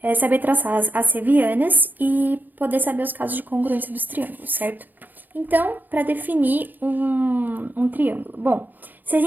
saber traçar as assevianas e poder saber os casos de congruência dos triângulos, certo? Então, para definir um triângulo. Bom, se a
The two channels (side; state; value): left; late; 0.086 ms